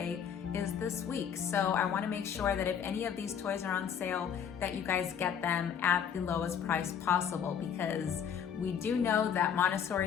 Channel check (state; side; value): quieter; right; 8.0 dB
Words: is this week. So I want to make sure that if any of these toys are on sale, that you guys get them at the lowest price possible, because we do know that